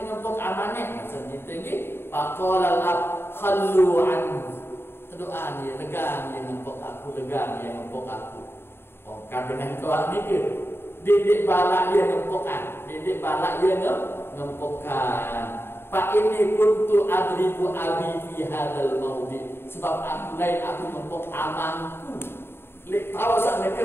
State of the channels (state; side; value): late; right; 0.11 ms